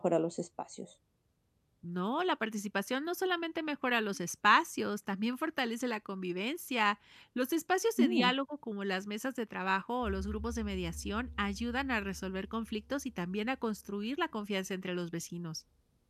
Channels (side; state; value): both; identical; correlation 1.00